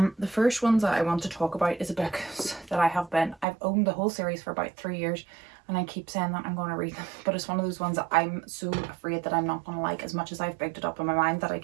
The first ones that I want to talk about is a book that I've owned the whole series for about 3 years, and I keep saying that I'm going to read them, but it's one of those ones that I'm so afraid that I'm not going to like as much as I've picked it up in my mind that I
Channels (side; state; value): left; drops out; at 3.5 s